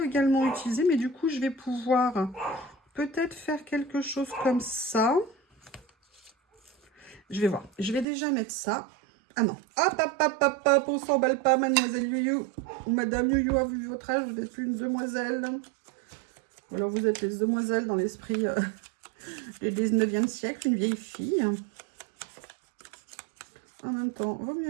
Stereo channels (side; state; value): left; drops out; at 8.1 s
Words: également utiliser, mais du coup, je vais pouvoir peut-être faire quelque chose comme ça. Je vais voir. Je vais déjà mettre ça. Ah non. Hop, hop, hop, hop, hop. On s'emballe pas, mademoiselle Youyou. Ou madame Youyou a vu votre âge. Vous n'êtes plus une demoiselle. Ou alors, vous êtes les demoiselles dans l'esprit du 19e siècle. Une vieille fille. En même temps, vaut